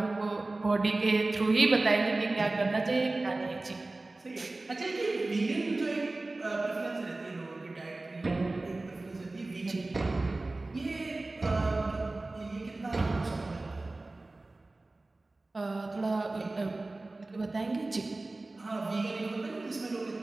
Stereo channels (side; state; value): left; quieter; 3.1 dB